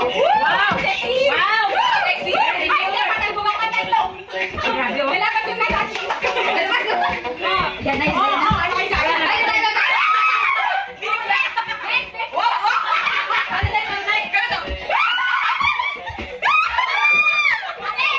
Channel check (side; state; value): both; identical; correlation 1.00